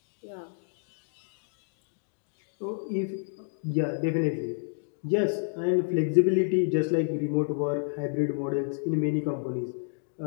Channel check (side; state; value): right; silent; digital silence